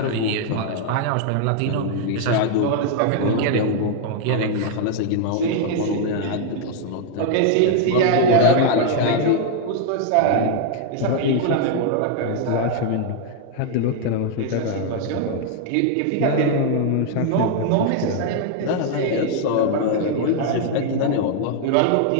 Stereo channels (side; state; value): both; different; correlation 0.00